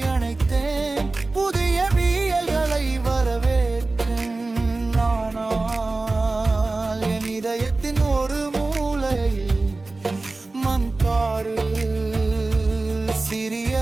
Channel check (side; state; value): left; quieter; 3.3 dB